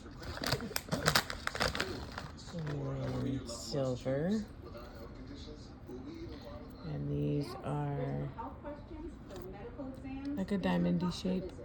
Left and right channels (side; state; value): both; identical; correlation 1.00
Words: And silver. And these are like a diamondy shape,